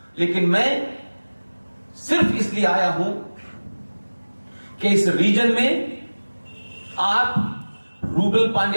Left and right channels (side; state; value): both; inverted; correlation -1.00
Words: लेकिन मैं सिर्फ इसलिए आया हूं कि इस रीजन में आप रूबल